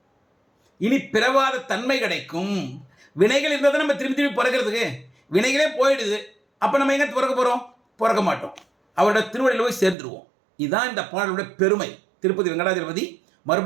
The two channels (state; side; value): drops out; left; at 10.0 s